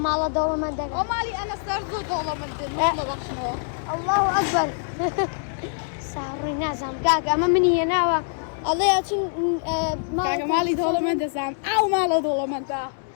دولة من دك ومالي أنا صار دولة من دك الله أكبر صاري نازم كاكا أما مني هنا الله يعطين كاكا مالي دولة من دسام أو مالا دولة من دا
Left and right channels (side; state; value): right; silent; 62 dB below the other